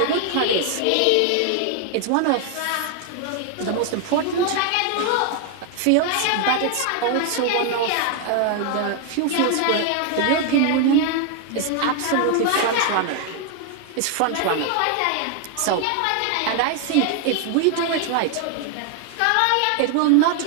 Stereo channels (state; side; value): different; both; correlation 0.00